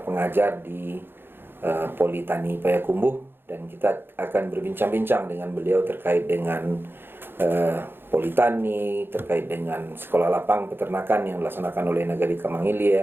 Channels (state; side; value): late; left; 0.10 ms